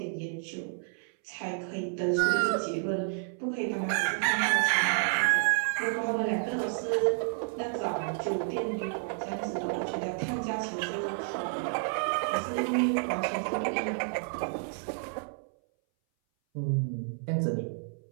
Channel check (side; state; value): left; silent; 58 dB below the other